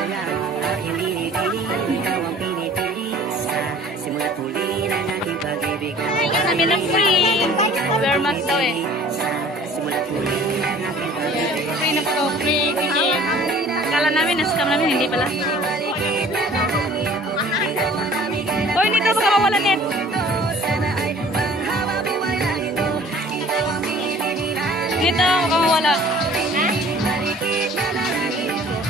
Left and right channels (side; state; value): both; normal; correlation 0.50